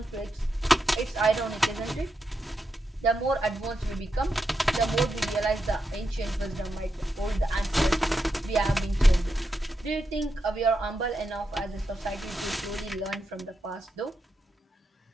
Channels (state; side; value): normal; both; correlation 0.85